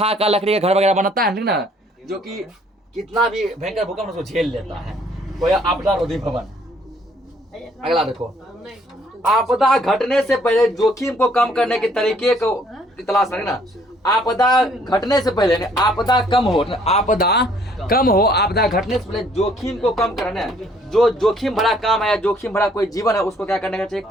का लकड़ी का घर वगैरह बनाता है ठीक ना, जो कि कितना भी भयंकर भूकंप उसको झेल लेता है। वो आपदा रोधी भवन। अगला देखो, आपदा घटने से पहले जोखिम को कम करने के तरीके को तलाश करें ना। आपदा घटने से पहले, आपदा कम हो, आपदा घटने से पहले जोखिम को कम करना। जो जोखिम भरा काम है, जोखिम भरा कोई जीवन है, उसको क्या करने का चाहिए,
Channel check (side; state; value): both; normal; correlation 0.62